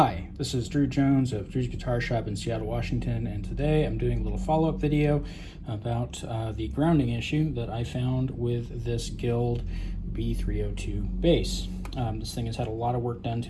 this is Drew Jones of Drewsguitarshop in Seattle, Washington, and today I'm doing a little follow-up video about the grounding issue that I found with this Guild B-302 bass. This thing has had a lot of work done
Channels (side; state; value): both; identical; correlation 1.00